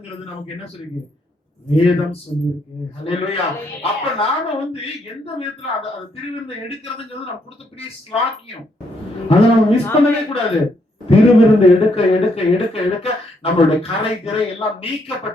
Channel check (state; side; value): normal; both; correlation 0.74